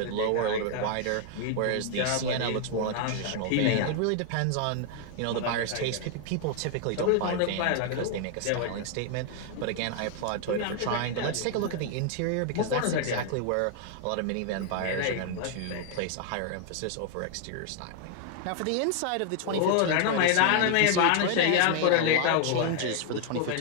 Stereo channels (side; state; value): both; different; correlation 0.00